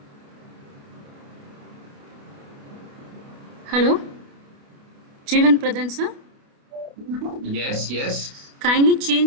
Hello, Jeevan Pradhan sir. Yes, yes. Kindly change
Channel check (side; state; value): left; late; 29 ms